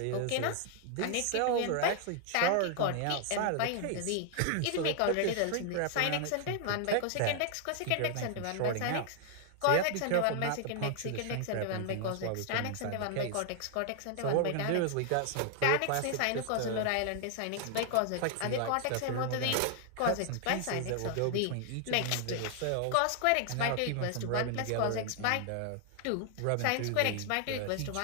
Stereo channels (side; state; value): both; different; correlation 0.00